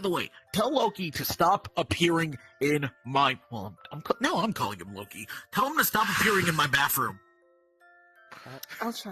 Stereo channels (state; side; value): identical; both; correlation 1.00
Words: the way, tell Loki to stop appearing in my. Well, now I'm calling him Loki. Tell him to stop appearing in my bathroom. I'll